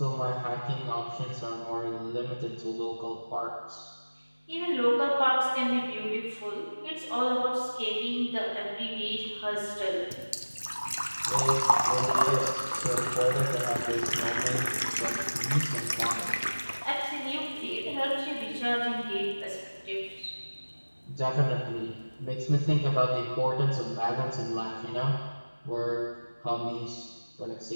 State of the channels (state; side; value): inverted; both; correlation -1.00